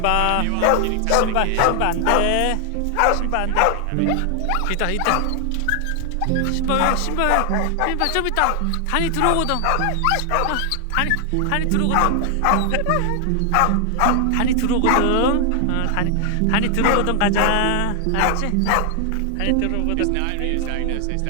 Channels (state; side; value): different; both; correlation 0.00